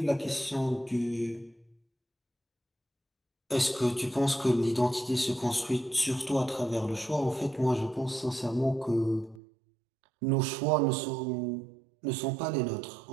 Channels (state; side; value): drops out; left; at 9.4 s